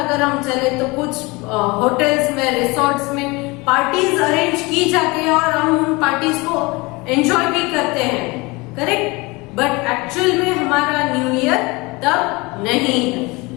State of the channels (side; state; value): right; quieter; 24.8 dB